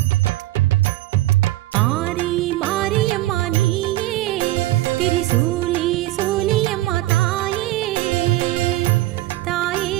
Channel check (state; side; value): quieter; left; 16.9 dB